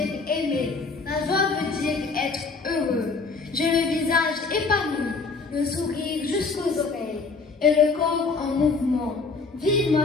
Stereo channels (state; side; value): quieter; right; 4.3 dB